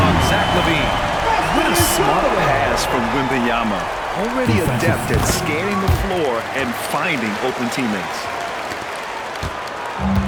Zach LaVine. What a smart pass from Wembanyama. Already adept at scanning the floor and finding open teammates.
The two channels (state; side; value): identical; both; correlation 1.00